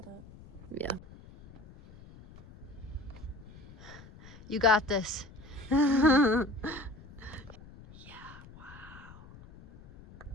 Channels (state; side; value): noise; left; rumble, 19 dB below the sound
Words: it. Yeah. You got this. Yeah, wow.